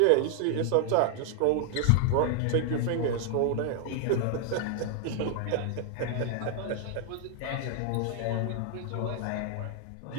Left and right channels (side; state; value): both; different; correlation 0.00